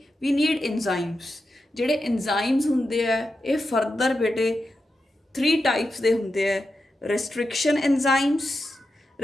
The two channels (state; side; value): normal; both; correlation 0.89